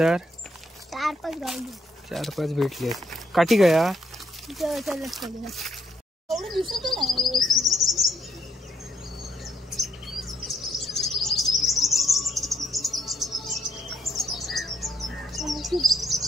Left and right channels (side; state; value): both; normal; correlation 0.72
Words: 4-5 भेटली आहेत। काठी गया